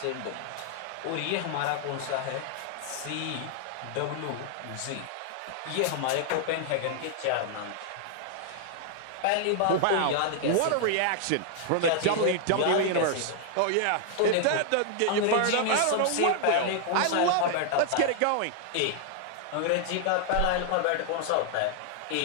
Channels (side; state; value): both; different; correlation 0.00